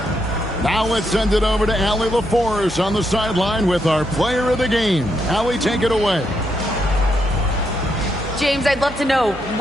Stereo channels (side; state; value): both; normal; correlation 0.79